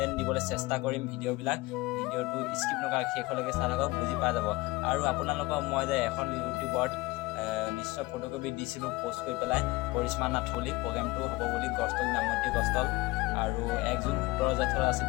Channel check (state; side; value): quieter; right; 21.2 dB